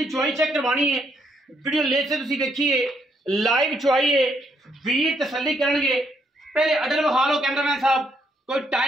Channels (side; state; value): both; normal; correlation 0.74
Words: चुआई चेक करवानी है। वीडियो लेट से तुसी देखिए, लाइव चुआई है, वीर तसल्ली करनगे। पहले अडल विखा लो कैमरामैन साहब, कोई